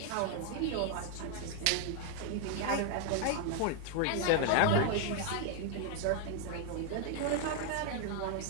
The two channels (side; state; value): both; different; correlation 0.00